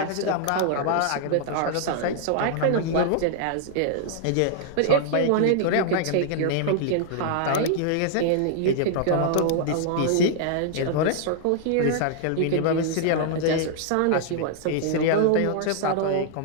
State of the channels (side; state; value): both; different; correlation -0.01